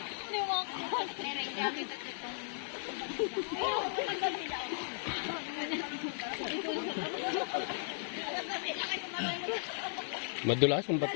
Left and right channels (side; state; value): right; silent; digital silence